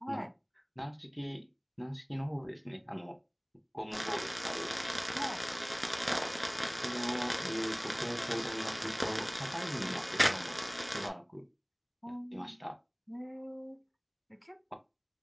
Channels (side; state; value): both; identical; correlation 1.00